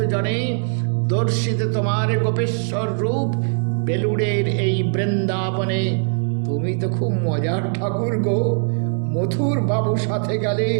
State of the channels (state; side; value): silent; left; 59 dB below the other